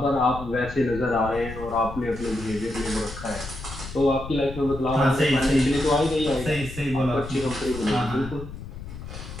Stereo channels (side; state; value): left; noise; rumble, 11 dB below the sound